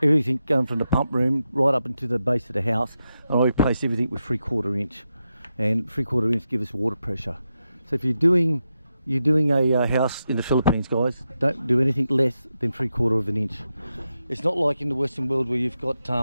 Everything going from the pump room right up into the base of the house, and I replaced everything with 3/4 inch. And 3/4 inch give us water pressure. So if you're doing a house in the Philippines, guys, don't do anything less than 3/4 inch. It's not like in the Western world where you've got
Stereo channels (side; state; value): both; inverted; correlation -0.87